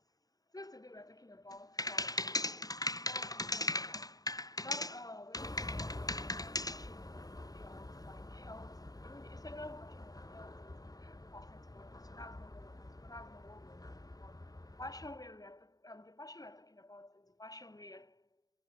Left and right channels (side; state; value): right; late; 0.18 ms